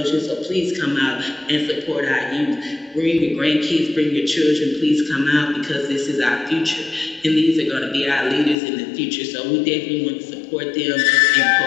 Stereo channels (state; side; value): drops out; right; at 8.6 s